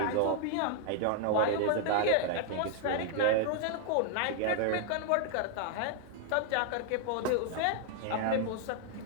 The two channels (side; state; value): both; different; correlation 0.00